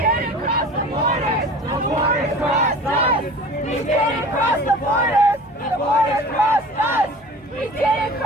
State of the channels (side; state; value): both; normal; correlation 0.41